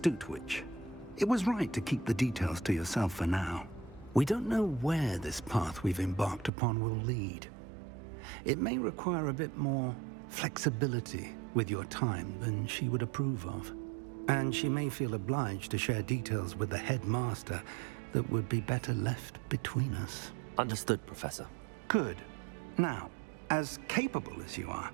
witch. It was right to keep the details to yourself for now. We don't know where this path we've embarked upon will lead. It may require a bit more flexibility with your time than she would approve of. And she may feel obliged to share details with the headmaster that would be better left between us. Understood, Professor. Good. Now, as capable as you are,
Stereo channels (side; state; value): left; drops out; at 6.5 s